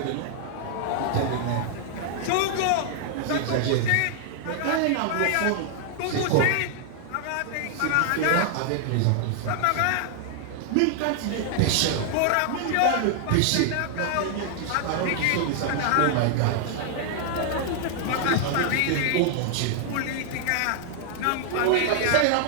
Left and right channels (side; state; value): both; different; correlation 0.00